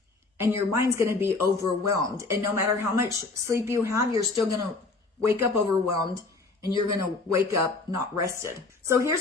and your mind's going to be overwhelmed. And no matter how much sleep you have, you're still going to wake up overwhelmed, and you're going to wake up not rested. So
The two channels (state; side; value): quieter; right; 3.7 dB